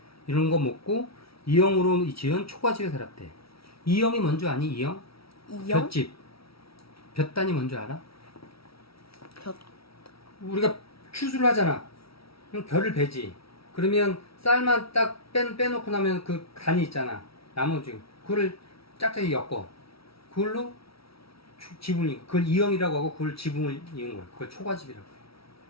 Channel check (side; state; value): right; late; 0.75 ms